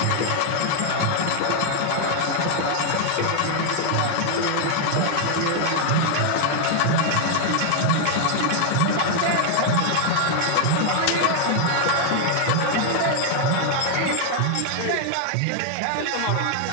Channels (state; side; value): different; both; correlation 0.00